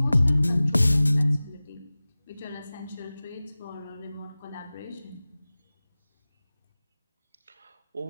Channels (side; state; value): both; inverted; correlation -0.98